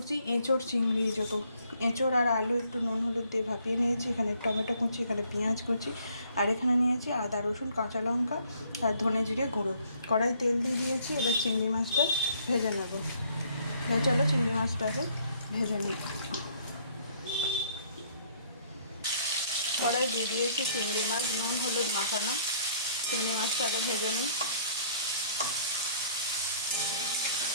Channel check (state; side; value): inverted; both; correlation -0.63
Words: এঁচোড় চিংড়ি। যত এঁচোড় আর আলু একটু নুন হলুদ দিয়ে ভাপিয়ে নিয়েছি। এখানে টমেটো কুচি, এখানে পেঁয়াজ কুচি, আর এখানে নিয়েছি আদা রসুন কাঁচা লঙ্কা আর ধনে জিরে গুঁড়ো। কড়াই তেল দিয়ে দিয়েছি। এবার চিংড়ি মাছটা ভেজে নেব। চলো চিংড়ি মাছটাকে ভেজে নিই। কড়াই দিয়ে দিয়েছি চিংড়ি মাছ, নুন হলুদ মাখানো। চিংড়ি মাছটাকে ভেজে নিই।